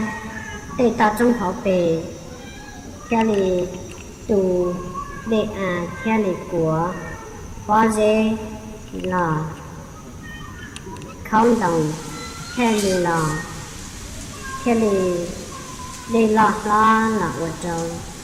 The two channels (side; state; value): both; identical; correlation 1.00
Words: để tàu trong họ về kia là tù để kia là của có dễ là không đồng kia là để lọt lo là ở trong